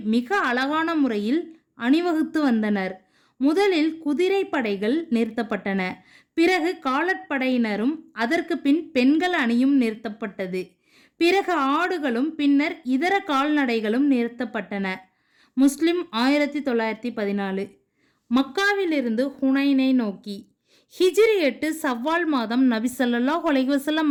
மிக அழகான முறையில் அணிவகுத்து வந்தனர். முதலில் குதிரை படைகள் நிறுத்தப்பட்டன. பிறகு காலாட்படையினரும் அதற்கு பின் பெண்கள் அணியும் நிறுத்தப்பட்டது. பிறகு ஆடுகளும் பின்னர் இதர கால்நடைகளும் நிறுத்தப்பட்டன. முஸ்லிம் 1914. மக்காவிலிருந்து ஹுனைனை நோக்கி. ஹிஜ்ரி 8 சவ்வால் மாதம் நபி ஸல்லல்லாஹு அலைஹி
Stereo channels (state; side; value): identical; both; correlation 1.00